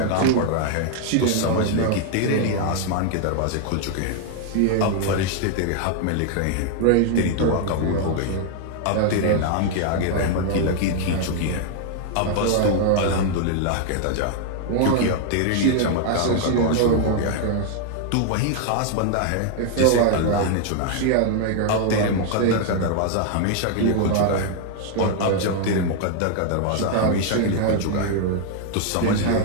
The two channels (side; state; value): both; different; correlation 0.00